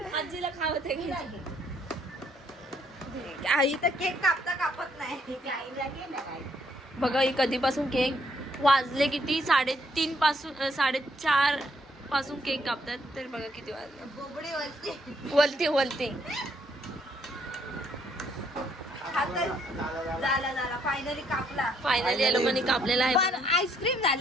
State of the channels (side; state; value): both; normal; correlation 0.70